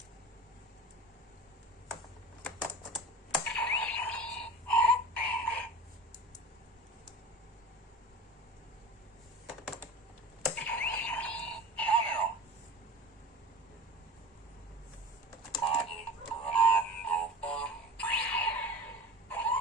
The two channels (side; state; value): both; normal; correlation 0.36